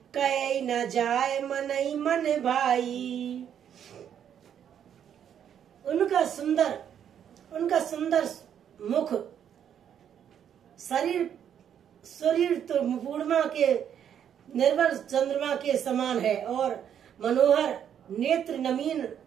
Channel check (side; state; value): left; quieter; 9.0 dB